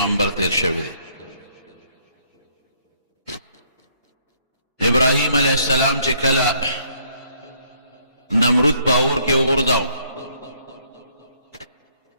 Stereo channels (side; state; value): both; inverted; correlation -0.66